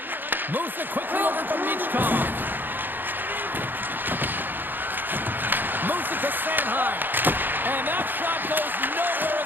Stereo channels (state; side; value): late; left; 0.092 ms